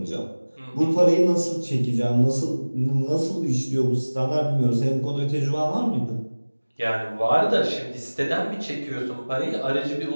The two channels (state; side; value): inverted; both; correlation -1.00